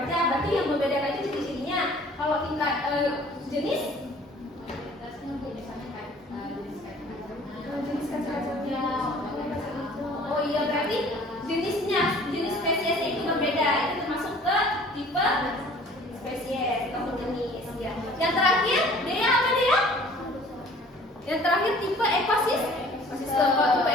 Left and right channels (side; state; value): both; normal; correlation 0.51